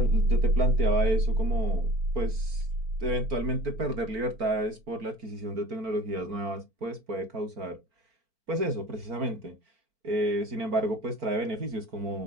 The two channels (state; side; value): late; left; 4.4 ms